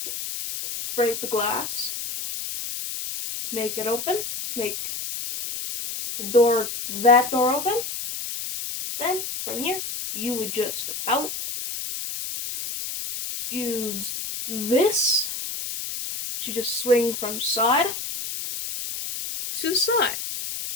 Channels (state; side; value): noise; left; hiss, 6 dB below the sound